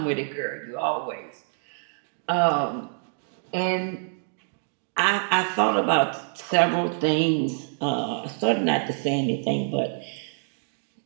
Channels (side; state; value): left; silent; 61 dB below the other